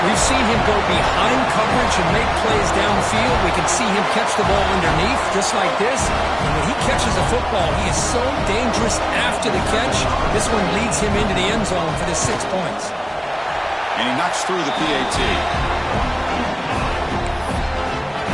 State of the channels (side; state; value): both; identical; correlation 1.00